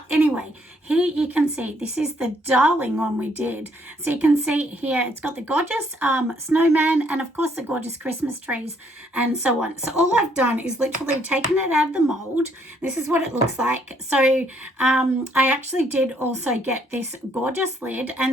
anyway, here you can see this is the darling one we did. So you can see here it's got the gorgeous snowman and of course the gorgeous Christmas trees and so on. So all I've done is literally taken it out of the mold. This is what it looks like. So I actually did also get this gorgeous lid,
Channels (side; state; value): both; normal; correlation 0.68